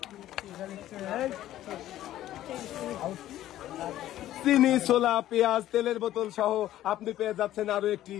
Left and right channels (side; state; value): right; quieter; 13.4 dB